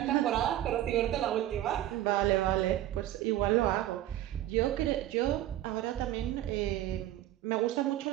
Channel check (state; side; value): quieter; left; 13.8 dB